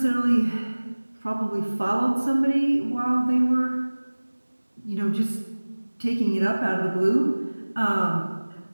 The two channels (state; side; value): inverted; both; correlation -1.00